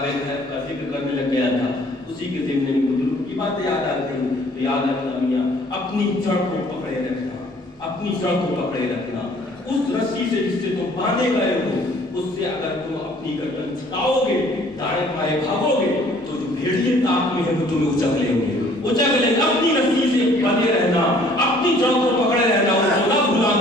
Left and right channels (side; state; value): both; normal; correlation 0.57